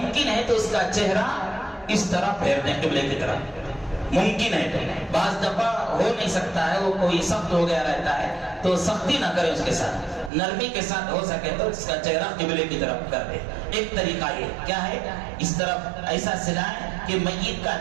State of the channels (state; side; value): drops out; left; at 10.3 s